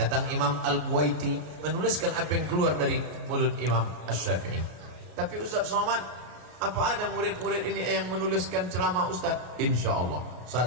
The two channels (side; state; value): left; late; 33 ms